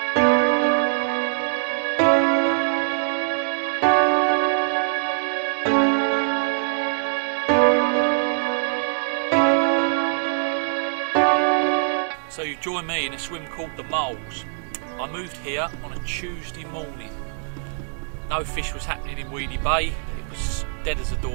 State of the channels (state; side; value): silent; left; digital silence